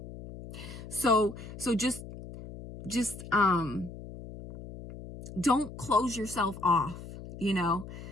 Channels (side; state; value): left; noise; hum, 13 dB below the sound